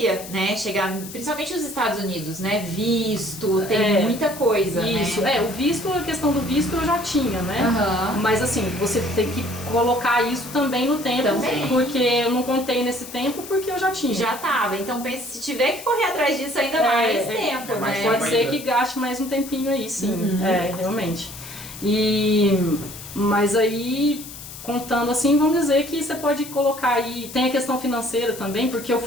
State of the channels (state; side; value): noise; left; hiss, 13 dB below the sound